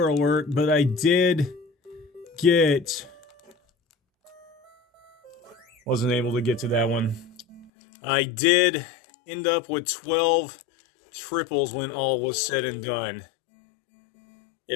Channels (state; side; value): drops out; right; at 7.7 s